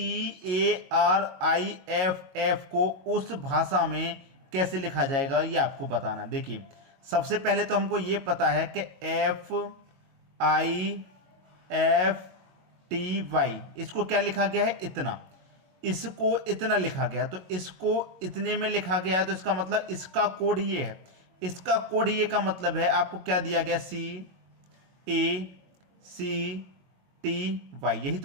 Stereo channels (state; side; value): late; left; 22 ms